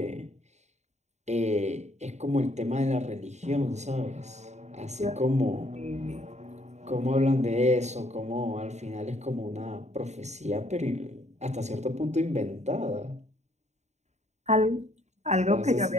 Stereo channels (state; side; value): late; left; 0.33 ms